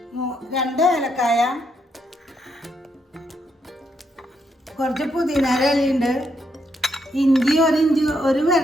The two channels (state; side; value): normal; both; correlation 0.78